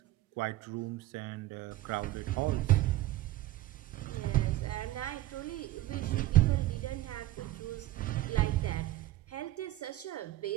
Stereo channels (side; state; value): left; quieter; 15.9 dB